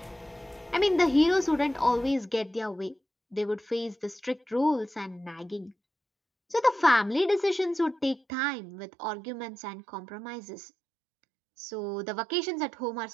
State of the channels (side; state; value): left; drops out; at 8.2 s